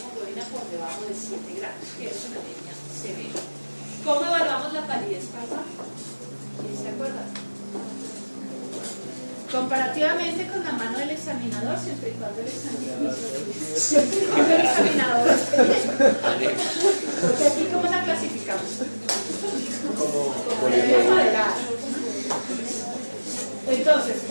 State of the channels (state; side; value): inverted; both; correlation -1.00